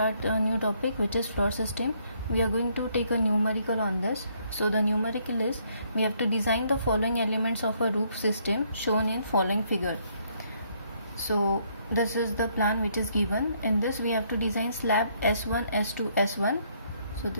a new topic which is floor system. We are going to take a numerical on this. So the numerical is we have to design the following elements of a roof system shown in following figure. So this is the plan which is given. In this we have to design slab S1, S2, S1. So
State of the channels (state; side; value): inverted; both; correlation -0.69